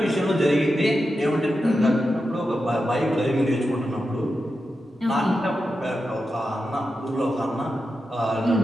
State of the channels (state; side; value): normal; both; correlation 0.90